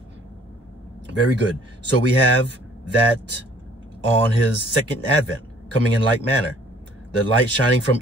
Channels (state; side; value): normal; both; correlation 0.56